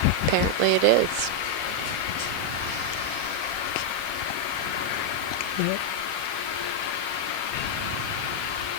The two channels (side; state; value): left; late; 5.9 ms